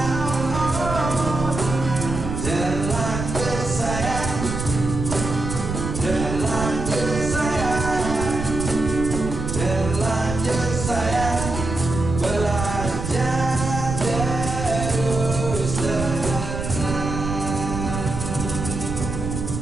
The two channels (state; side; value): noise; right; rumble, 5 dB below the sound